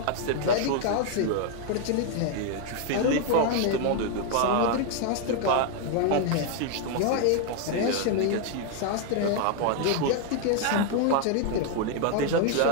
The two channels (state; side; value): different; both; correlation 0.00